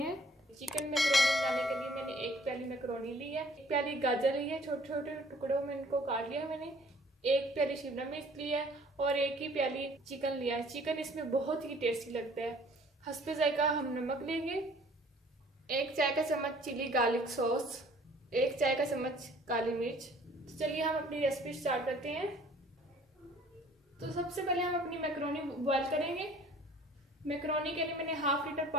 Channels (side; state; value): both; normal; correlation 0.54